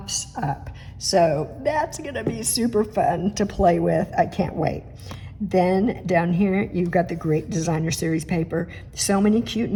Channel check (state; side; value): identical; both; correlation 1.00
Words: up. So that's gonna be super fun to play with. I can't wait. Then down here, you've got the great designer series paper. So many cute